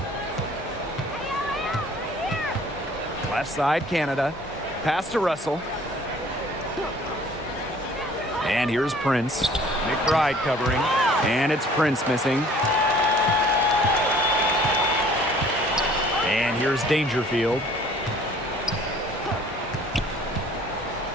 Left side, Canada. Pass to Russell. And here's Prince. McBride covering. And it's Prince missing. And here's Dangerfield.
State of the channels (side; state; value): both; normal; correlation 0.53